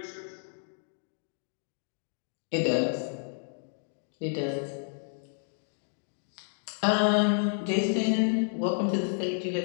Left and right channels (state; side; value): silent; right; 57 dB below the other